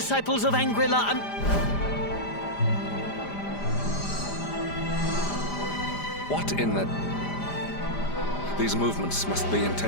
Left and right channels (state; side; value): late; right; 5.0 ms